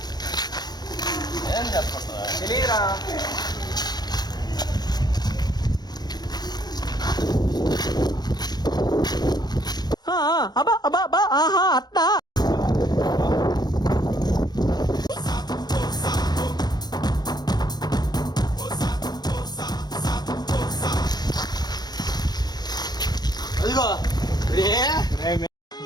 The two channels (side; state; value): right; late; 0.20 ms